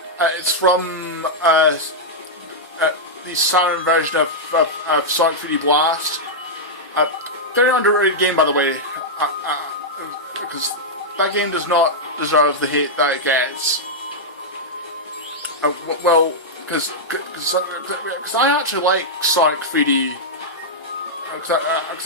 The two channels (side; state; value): both; normal; correlation -0.06